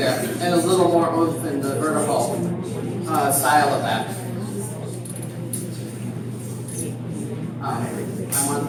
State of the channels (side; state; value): both; identical; correlation 1.00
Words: and a little more oomph in the vertical style of that. I want